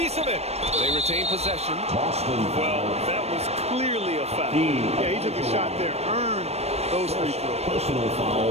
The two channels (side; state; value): left; late; 0.31 ms